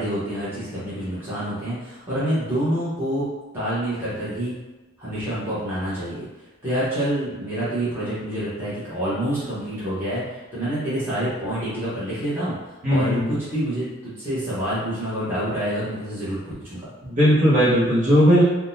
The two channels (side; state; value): both; normal; correlation 0.62